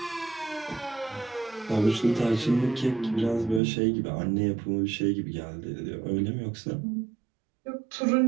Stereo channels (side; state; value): left; drops out; at 3.6 s